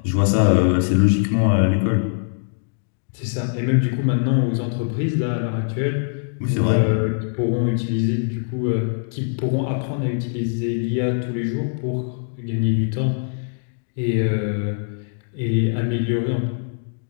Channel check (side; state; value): right; silent; digital silence